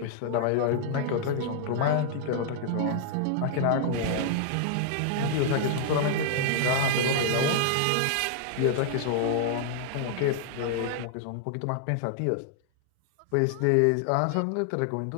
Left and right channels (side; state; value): both; different; correlation -0.01